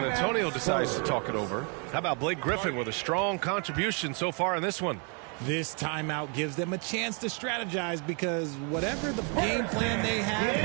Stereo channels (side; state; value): left; quieter; 36.4 dB